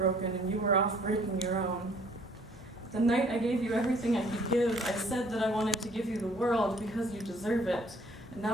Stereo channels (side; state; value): both; normal; correlation 0.59